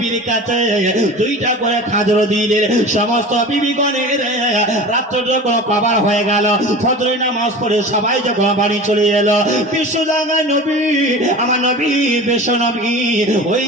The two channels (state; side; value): normal; both; correlation 0.35